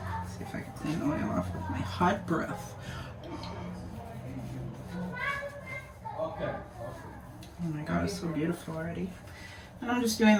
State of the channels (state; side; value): identical; both; correlation 1.00